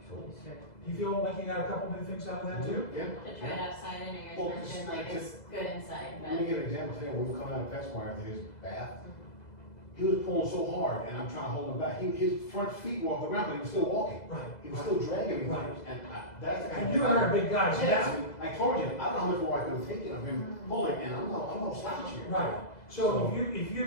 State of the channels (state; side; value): late; right; 2.0 ms